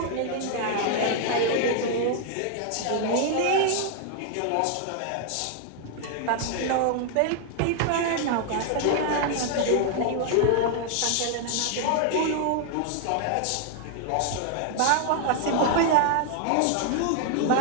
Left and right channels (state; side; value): different; both; correlation 0.00